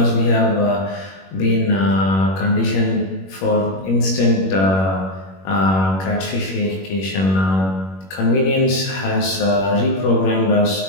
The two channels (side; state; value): right; late; 21 ms